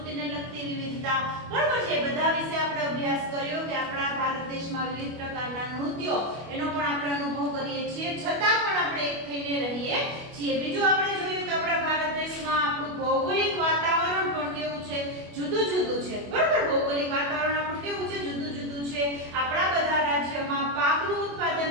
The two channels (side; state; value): left; late; 25 ms